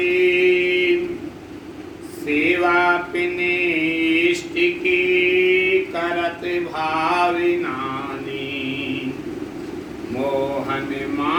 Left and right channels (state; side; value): identical; both; correlation 1.00